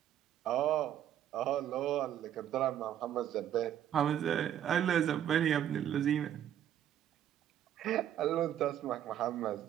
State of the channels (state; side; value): quieter; left; 10.7 dB